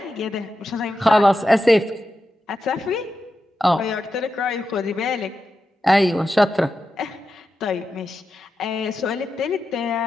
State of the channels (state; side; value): normal; both; correlation 0.89